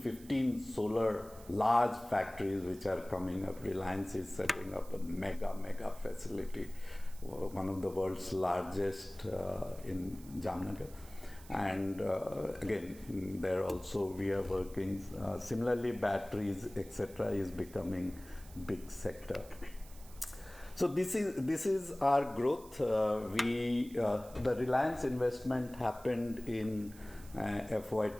solar large factories which are coming up. Reliance is setting up a mega facility, one of the world's largest in Jamnagar. And again, there also we are working. Similarly, batteries, etc., is becoming big sector. So this is our growth. The Reliance investment happened in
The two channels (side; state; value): right; noise; hiss, 21 dB below the sound